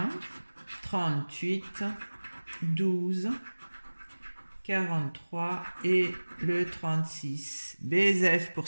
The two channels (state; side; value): inverted; both; correlation -1.00